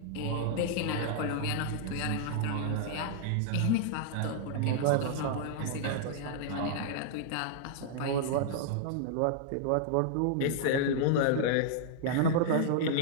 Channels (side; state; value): both; different; correlation -0.01